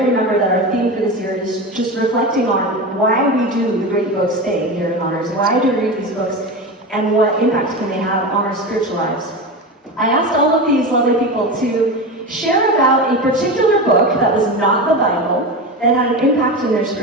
remember that our theme for this year is just reflecting on why we do the great books thing here in Honors, why do we read these books, and what impact can they have on our spiritual lives. I asked all of these lovely people to share about a particular book that was not the Bible that had an impact in their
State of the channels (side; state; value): both; normal; correlation 0.23